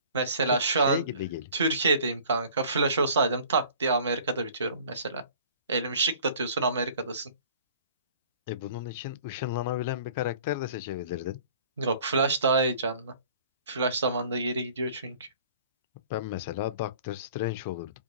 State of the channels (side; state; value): both; inverted; correlation -0.49